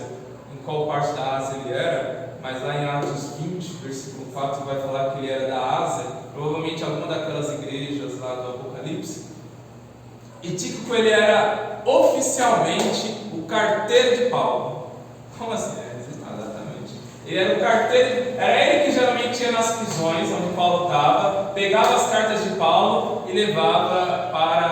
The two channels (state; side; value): identical; both; correlation 1.00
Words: em qual parte da Ásia ele era, mas lá em Atos 20, versículo 4, vai falar que ele era da Ásia, provavelmente alguma daquelas igrejas lá do Apocalipse. E Tíquico, ele era oficialmente o carteiro de Paulo. Como assim? Exatamente. Ele era o carteiro, era ele que geralmente ia nas prisões onde Paulo estava, pegava as cartas de Paulo e levava